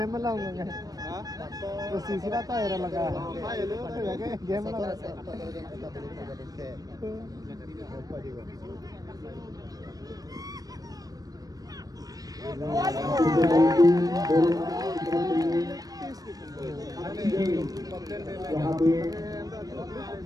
लाऊंगा तो सीसी रहता है लगा गेम लगा यहाँ पे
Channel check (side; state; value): left; late; 0.18 ms